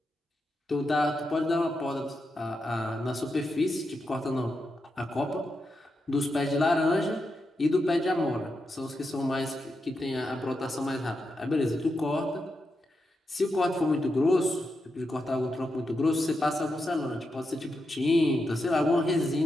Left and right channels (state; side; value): normal; both; correlation 0.86